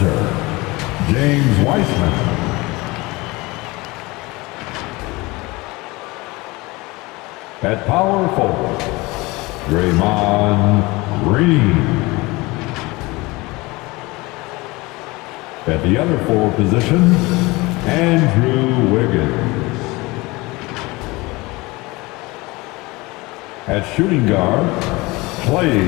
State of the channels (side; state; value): right; quieter; 22.9 dB